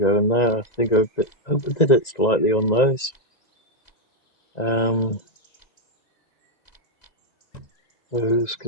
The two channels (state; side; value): late; right; 2.0 ms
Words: in there. I think I overdid it slightly on those. Those